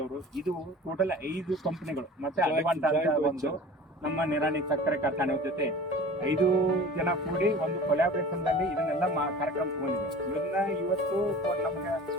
ಇದು ಟೋಟಲ್ 5 ಕಂಪನಿಗಳು ಮತ್ತೆ ಅಡ್ವಾಂಟ ಅಂತ ಒಂದು ನಮ್ಮ ನಿರಾಣಿ ಸಕ್ಕರೆ ಕಾರ್ಖಾನೆ ಜೊತೆ 5 ಜನ ಕೂಡಿ ಒಂದು ಕೊಲಾಬ್ರೇಷನ್ ನಲ್ಲಿ ಇದನ್ನೆಲ್ಲ ಕಾರ್ಯಕ್ರಮ ತಗೊಂಡಿದೆ. ಇದನ್ನ ಇವತ್ತು ನಮ್ಗೆ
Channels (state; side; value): normal; both; correlation 0.40